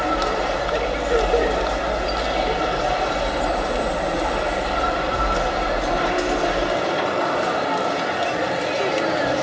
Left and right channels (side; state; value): both; identical; correlation 1.00